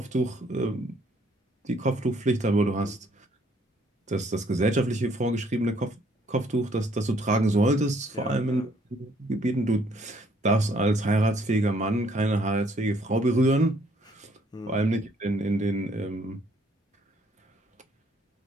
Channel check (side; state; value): both; normal; correlation 0.65